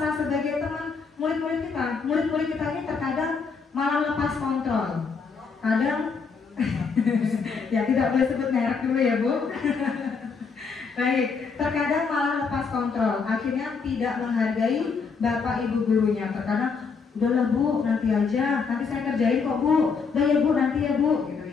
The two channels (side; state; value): right; quieter; 5.3 dB